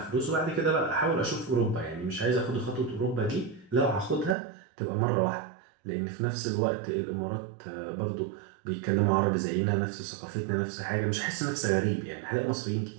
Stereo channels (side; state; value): left; drops out; at 4.4 s